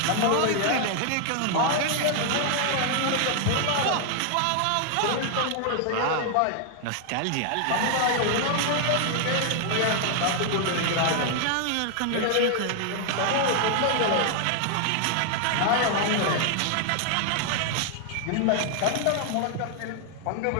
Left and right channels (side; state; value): both; different; correlation 0.00